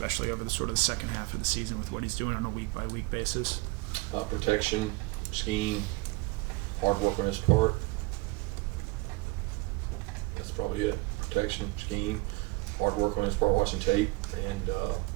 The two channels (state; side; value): quieter; left; 24.0 dB